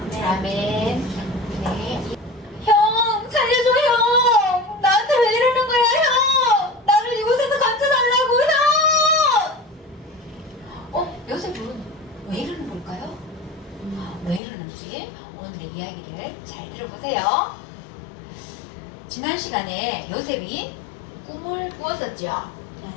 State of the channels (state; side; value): drops out; right; at 14.4 s